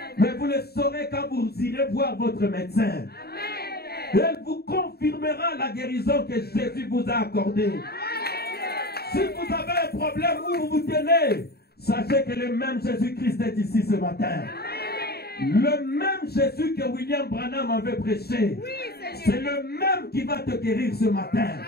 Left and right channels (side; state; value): right; late; 0.46 ms